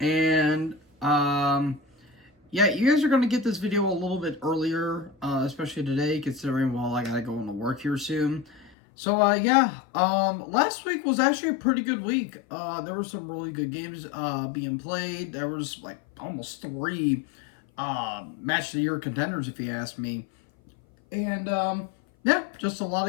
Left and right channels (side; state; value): right; drops out; at 8.7 s